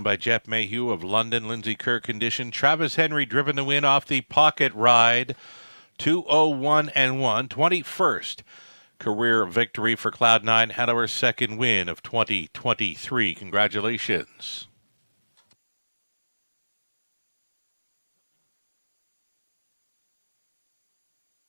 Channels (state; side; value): inverted; both; correlation -1.00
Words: by Jeff Mayhew of London. Lindsay Kerr condition. Travis Henry driven the win off the pocket ride. 2-0-1-1. 21st career victory for Cloud 9 Hanover's second win of 2023. Congratulations.